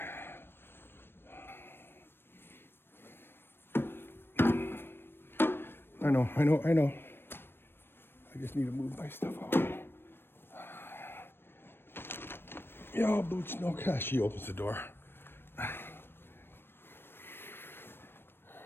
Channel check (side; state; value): right; late; 0.10 ms